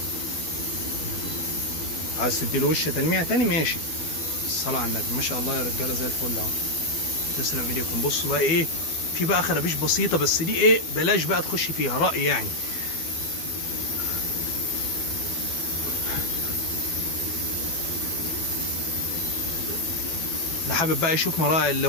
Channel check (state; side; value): late; right; 12 ms